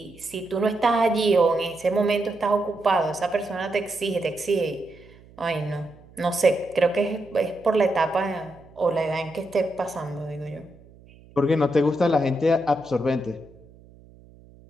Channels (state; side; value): noise; right; hum, 24 dB below the sound